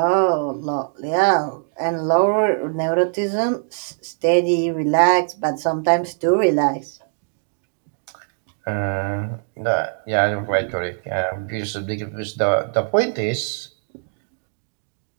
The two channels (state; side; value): silent; left; digital silence